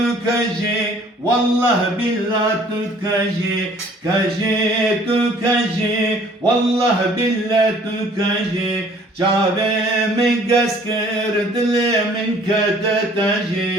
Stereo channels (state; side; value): normal; both; correlation 0.55